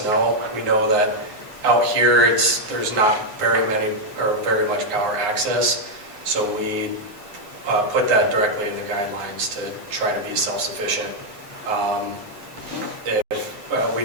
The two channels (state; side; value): late; left; 9.5 ms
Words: know. We know that out here, there's not very much power access, so we put that directly in the guidelines to try to be self-sufficient. We